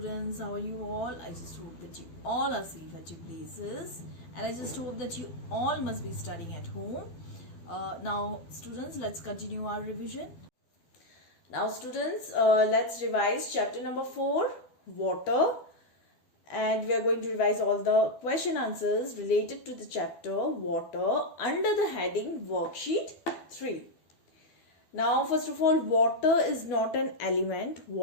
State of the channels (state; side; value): late; right; 12 ms